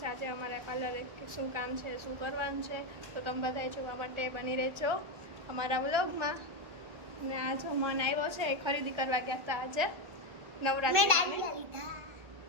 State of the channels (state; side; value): late; left; 1.5 ms